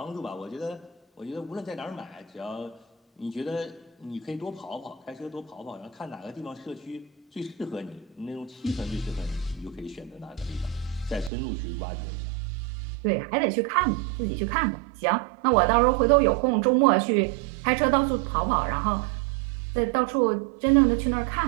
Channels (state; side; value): drops out; left; at 11.3 s